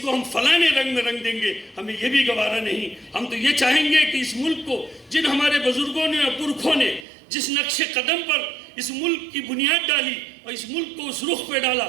ہم فلانے رنگ میں رنگ دیں گے، ہمیں یہ بھی گوارا نہیں۔ ہم تو یہ چاہیں گے کہ اس ملک کو جن ہمارے بزرگوں نے اور پرکھوں نے جس نقش قدم پر اس ملک کی بنیاد ڈالی اور اس ملک کو اس رخ پہ ڈالا،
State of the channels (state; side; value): drops out; left; at 7.1 s